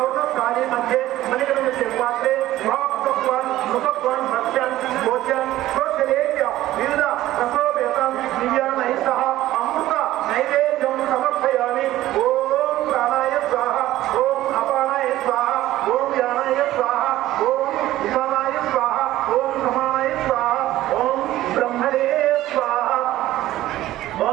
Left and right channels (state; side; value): quieter; left; 15.0 dB